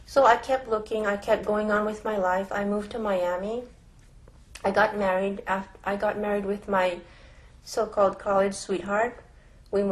So I kept looking, I kept going on with my life. I moved to Miami. I got married with my so-called college sweetheart. We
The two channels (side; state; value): both; identical; correlation 1.00